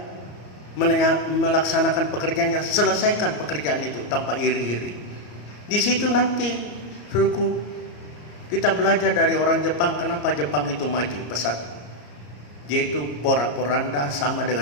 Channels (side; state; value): right; late; 34 ms